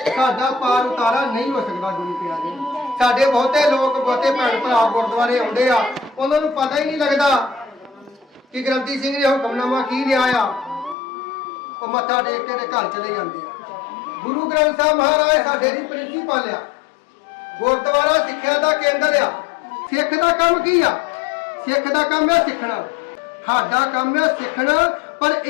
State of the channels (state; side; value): drops out; right; at 11.0 s